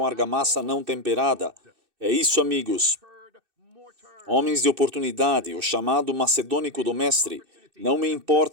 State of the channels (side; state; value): left; late; 2.6 ms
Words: argamassa não temperada. É isso, amigos. Homens de oportunidade, o chamado macedônico do mestre. Não me